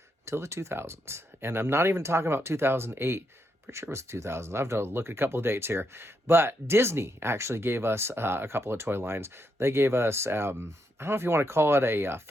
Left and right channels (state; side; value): normal; both; correlation 0.80